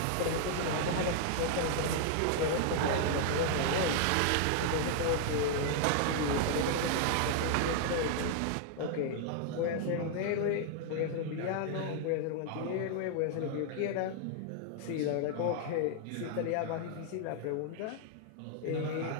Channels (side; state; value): both; different; correlation 0.00